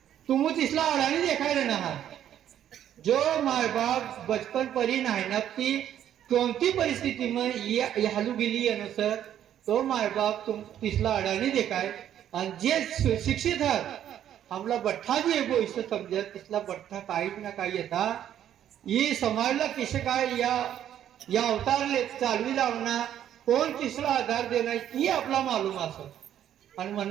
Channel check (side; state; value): left; quieter; 10.6 dB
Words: तुम तिसला अडाणी देखाय रहना जो माय बाप बचपन परी नाहनती कोणती परिस्थिती में हालू गेली अनुसार तो माय बाप तुम तिसला अडाणी देखाय आणि जे शिक्षित आहेत हमला बठ्ठा भी एगो इसे समझत तिसला बठ्ठा काही ना काही येता ये समाजला किसे काय या अवतारले चालवी लावणार कोण तिसरा आधार देणार ही आपला मालूम असत आणि